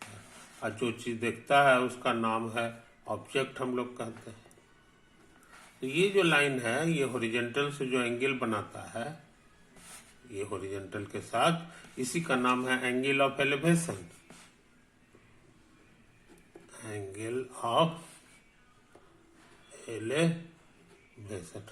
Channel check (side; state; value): both; identical; correlation 1.00